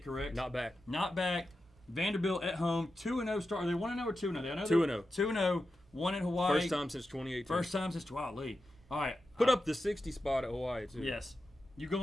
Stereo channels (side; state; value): both; normal; correlation 0.90